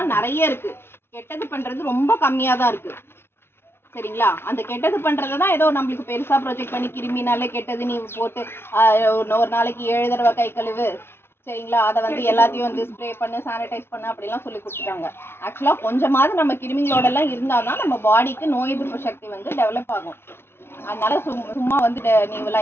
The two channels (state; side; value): late; right; 0.12 ms